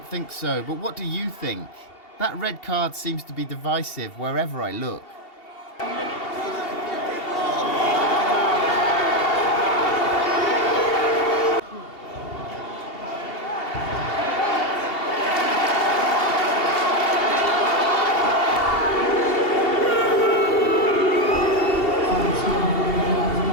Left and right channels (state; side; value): late; right; 2.7 ms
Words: think so, but what do you think? That red card seems to be divisive wherever I look.